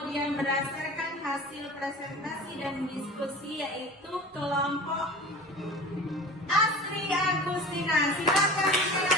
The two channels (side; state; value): both; normal; correlation 0.37